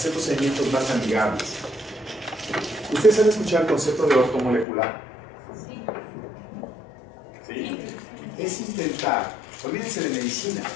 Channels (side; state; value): right; drops out; at 4.7 s